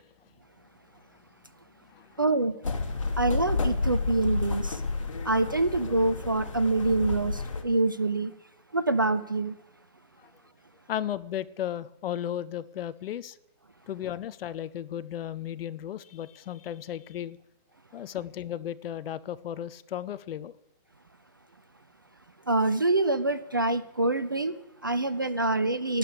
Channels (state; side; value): inverted; both; correlation -0.60